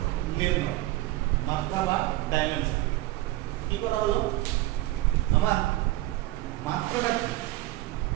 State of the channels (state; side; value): quieter; left; 17.7 dB